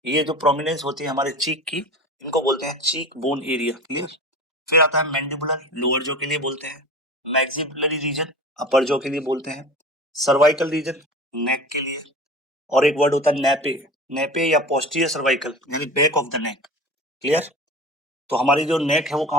ये जो प्रोमिनेंस होती है हमारे चीक की, इनको बोलते हैं चीक बोन एरिया। क्लियर? फिर आता है मैंडिबुलर, लोअर जॉ के लिए बोलते हैं। मैक्सिलरी रीजन, अपर जॉ के लिए बोलते हैं। सर्वाइकल रीजन, नेक के लिए। और एक वर्ड होता है नेपे, नेपे या पोस्टीरियर सर्वाइकल, यानी back of the neck. Clear? तो हमारी जो नेक है वो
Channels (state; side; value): normal; both; correlation 0.34